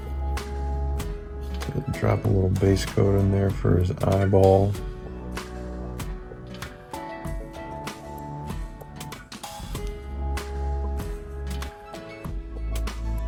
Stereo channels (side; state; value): both; identical; correlation 1.00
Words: Drop a little base coat in there for his eyeball.